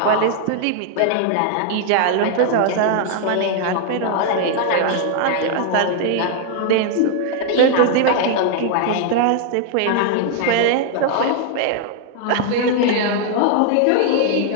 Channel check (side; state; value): both; different; correlation 0.00